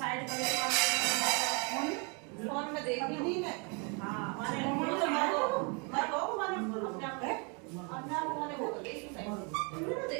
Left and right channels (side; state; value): left; quieter; 34.2 dB